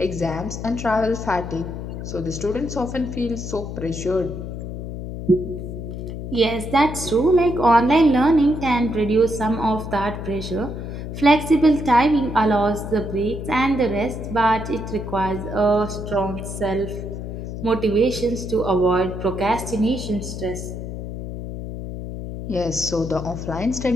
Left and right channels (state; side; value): noise; left; hum, 7 dB below the sound